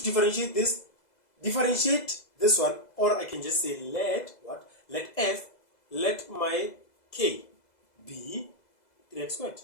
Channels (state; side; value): late; right; 2.0 ms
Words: differentiate this. Differentiate this one, or I can just say let what? Let f, let my k be 3x squared.